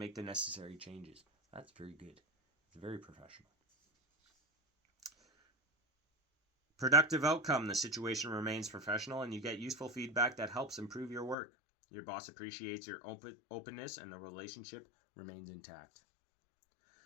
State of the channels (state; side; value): drops out; right; at 11.4 s